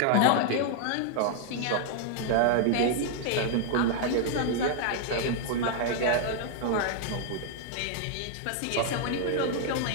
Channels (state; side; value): different; both; correlation 0.00